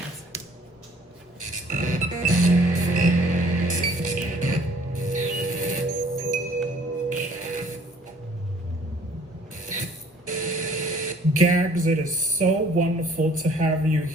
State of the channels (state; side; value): normal; both; correlation 0.57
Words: Gags, it is so wonderful to have you